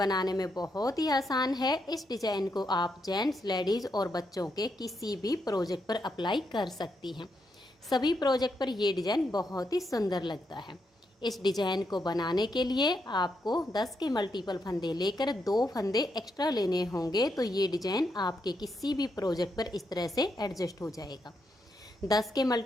में बहुत ही आसान है। इस डिजाइन को आप जेंट्स, लेडीज़ और बच्चों के किसी भी प्रोजेक्ट पर अप्लाई कर सकती हैं। सभी प्रोजेक्ट पर ये डिजाइन बहुत ही सुंदर लगता है। इस डिजाइन को बनाने के लिए आपको 10 के मल्टीपल फंदे लेकर 2 फंदे एक्स्ट्रा लेने होंगे, तो ये डिजाइन आपके किसी भी प्रोजेक्ट पर इस तरह से एडजस्ट हो जाएगा। 10 के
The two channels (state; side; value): normal; both; correlation 0.81